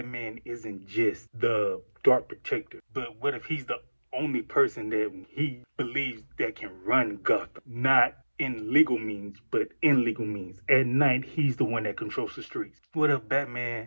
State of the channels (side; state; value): both; inverted; correlation -1.00